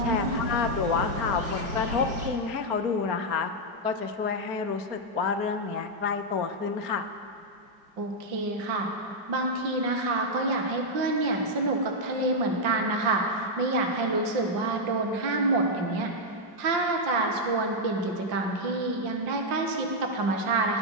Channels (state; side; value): late; left; 5.7 ms